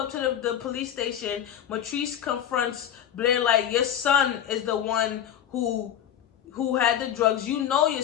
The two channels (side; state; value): right; quieter; 10.0 dB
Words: to the police station. Matrice confronts Blair like, your son is the one who had the drugs. You know your